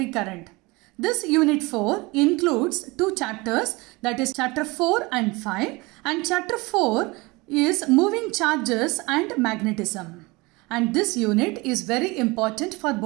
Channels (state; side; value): quieter; left; 24.1 dB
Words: current. This Unit 4 includes two chapters, that is chapter 4 and 5, and chapter 4 is moving charges and magnetism. And this unit is very important for